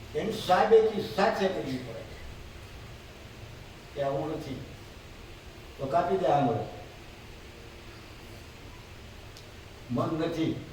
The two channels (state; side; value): identical; both; correlation 1.00